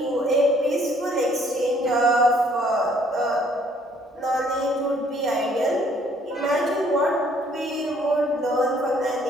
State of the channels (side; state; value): both; normal; correlation 0.62